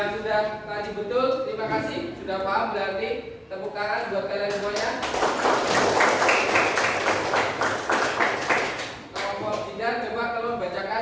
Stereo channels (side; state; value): both; identical; correlation 1.00